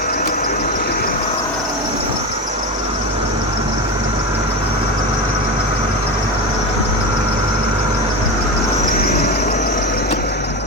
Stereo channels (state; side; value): normal; both; correlation 0.21